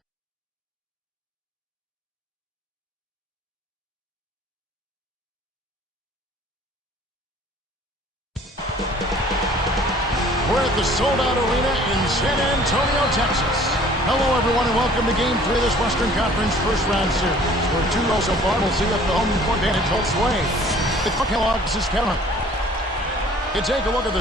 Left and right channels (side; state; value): both; normal; correlation 0.52